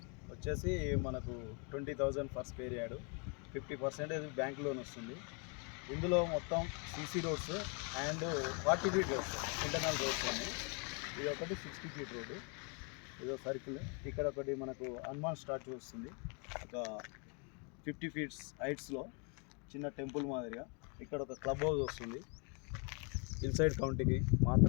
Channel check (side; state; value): right; quieter; 35.7 dB